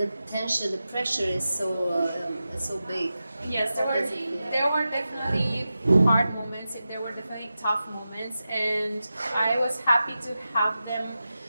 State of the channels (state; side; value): inverted; both; correlation -0.92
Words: tension, the pressure is so big. Yes, there were definitely hard moments. There were definitely tough moments, and I was happy to have them